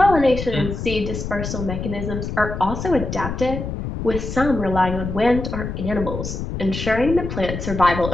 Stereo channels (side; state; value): left; noise; rumble, 5 dB below the sound